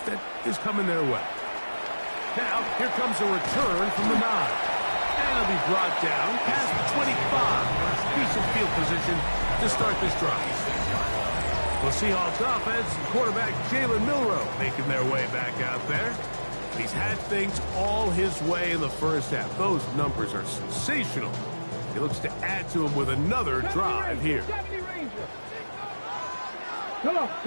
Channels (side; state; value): both; inverted; correlation -1.00